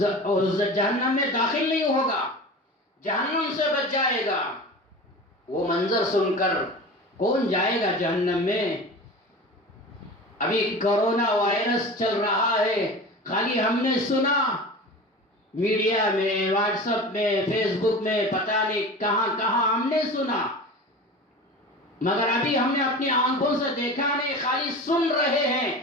داخل نہیں ہوگا، جہنم سے بچ جائے گا۔ وہ منظر سن کر کون جائے گا جہنم میں؟ ابھی کرونا وائرس چل رہا ہے، خالی ہم نے سنا میڈیا میں، واٹس ایپ میں، فیس بک میں، پتہ نہیں کہاں کہاں ہم نے سنا، مگر ابھی ہم نے اپنی آنکھوں سے دیکھا نہیں، خالی سن رہے ہیں۔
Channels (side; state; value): both; normal; correlation 0.34